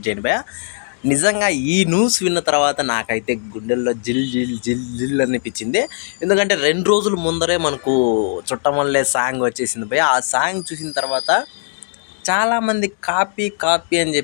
చేయండి. నిజంగా ఈ న్యూస్ విన్న తర్వాత నాకైతే గుండెల్లో జిల్ జిల్ జిల్ జిల్ అనిపించింది. ఎందుకంటే 2 రోజుల ముందరే మనకు చుట్టమల్లే సాంగ్ వచ్చేసింది. ఆ సాంగ్ చూసిన తర్వాత చాలామంది కాపీ కాపీ అని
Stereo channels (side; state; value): right; silent; 67 dB below the other